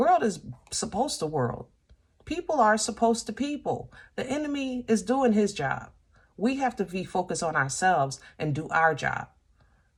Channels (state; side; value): identical; both; correlation 1.00